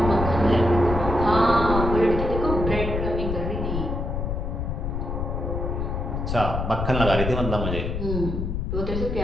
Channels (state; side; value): noise; left; rumble, 2 dB below the sound